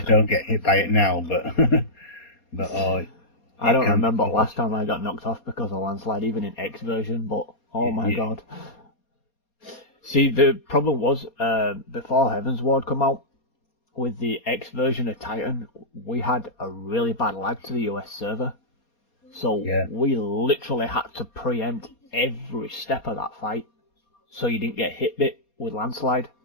don't get hit by it now, but I don't remember last time I got knocked off because of landslide, even in X version. But oh my god. See, the problem was before Heaven's Ward come out with the X version of Titan, we had a really bad lag to the US server, so we literally had to preempt every step of that fight, so you didn't get hit bit with landslide,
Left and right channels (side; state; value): right; late; 4.2 ms